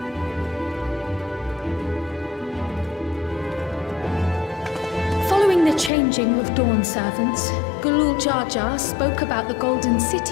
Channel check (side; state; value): right; drops out; at 5.9 s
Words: Following the changing of Dawn servants, Gulul Jar Jar spoke about the Golden